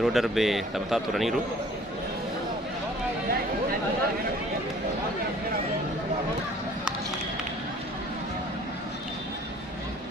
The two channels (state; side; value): normal; both; correlation 0.53